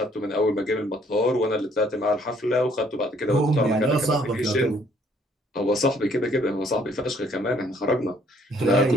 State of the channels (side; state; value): both; normal; correlation 0.64